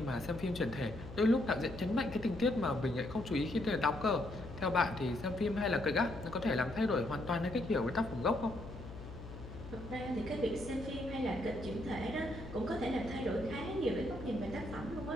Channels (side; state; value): left; noise; hum, 12 dB below the sound